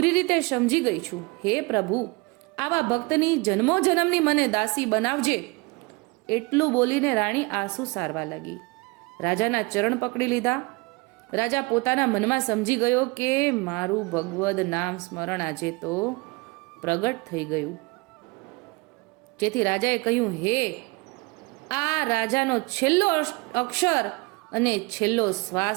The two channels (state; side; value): quieter; left; 26.7 dB